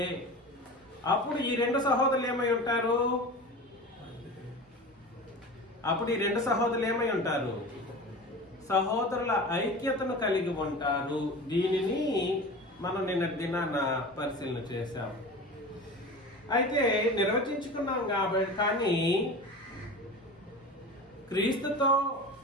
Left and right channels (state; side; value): normal; both; correlation 0.33